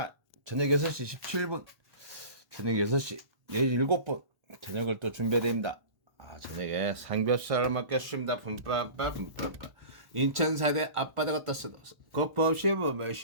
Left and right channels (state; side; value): late; left; 1.1 ms